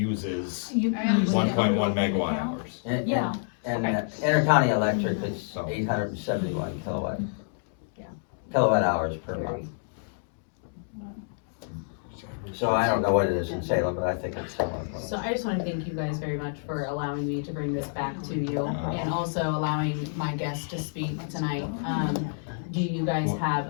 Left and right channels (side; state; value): right; silent; digital silence